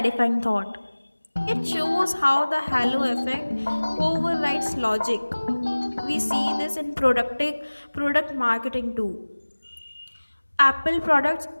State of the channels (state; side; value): inverted; both; correlation -1.00